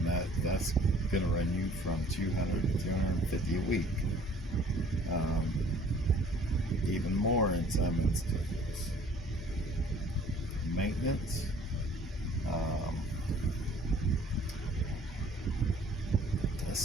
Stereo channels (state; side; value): normal; both; correlation 0.54